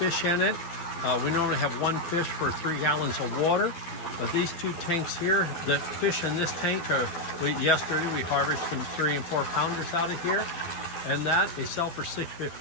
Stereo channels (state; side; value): late; right; 12 ms